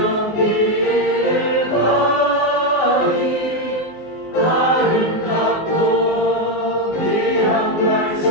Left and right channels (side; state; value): right; late; 19 ms